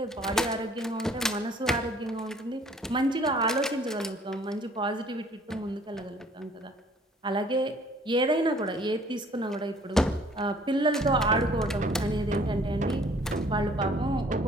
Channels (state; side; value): normal; both; correlation 0.56